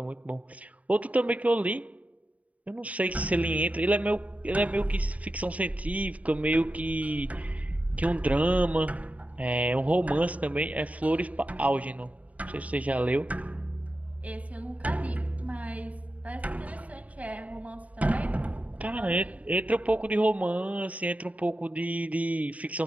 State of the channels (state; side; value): late; left; 0.069 ms